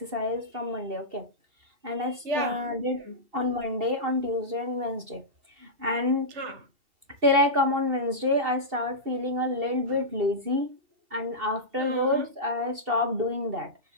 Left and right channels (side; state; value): left; late; 2.7 ms